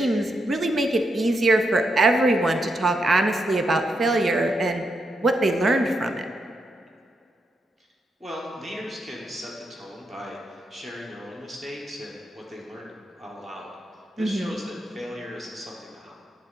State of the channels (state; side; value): normal; both; correlation 0.82